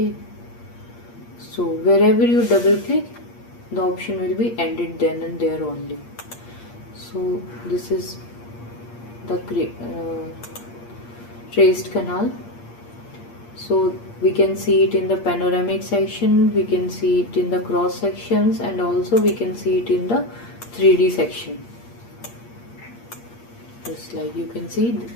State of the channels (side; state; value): right; late; 8.6 ms